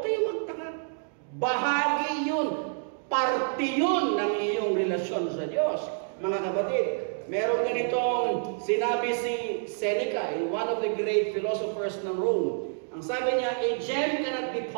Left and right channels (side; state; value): left; silent; digital silence